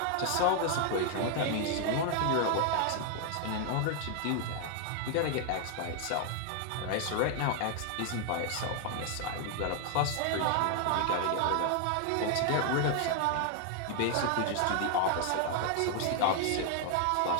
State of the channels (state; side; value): different; both; correlation 0.00